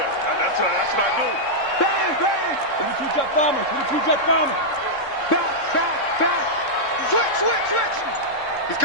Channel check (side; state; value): right; late; 3.7 ms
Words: that's what I do. Bang, bang. 22 jet bombers. 22 jet bombers. Back. Switch. He's